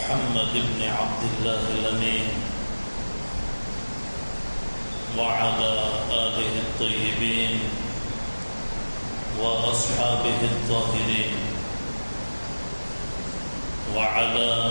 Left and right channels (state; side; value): inverted; both; correlation -1.00